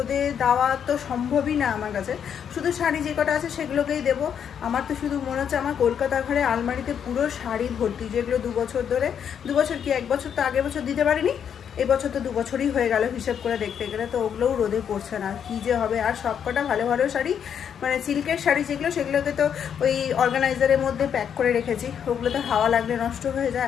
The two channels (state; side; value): quieter; right; 8.2 dB